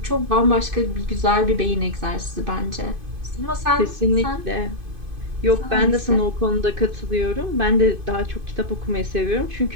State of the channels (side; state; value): left; late; 2.5 ms